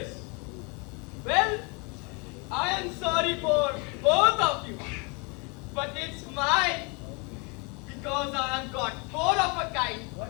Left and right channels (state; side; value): quieter; right; 31.6 dB